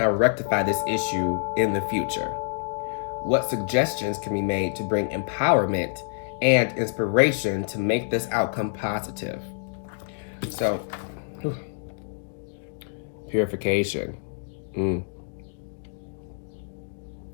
rectify this issue in the future? What suggestions can be made to bring empowerment and inspiration to make this outcome positive? So, purification.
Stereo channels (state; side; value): silent; right; digital silence